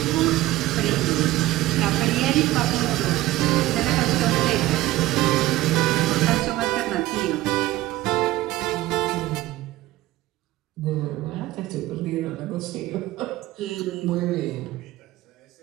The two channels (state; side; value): quieter; left; 16.7 dB